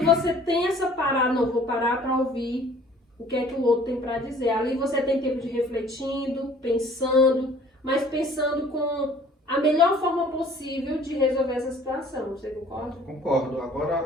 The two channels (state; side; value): normal; both; correlation 0.53